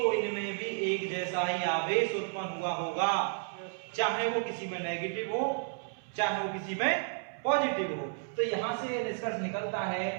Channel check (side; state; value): left; silent; 56 dB below the other